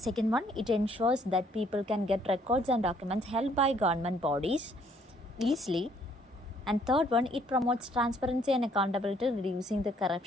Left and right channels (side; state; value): both; normal; correlation 0.64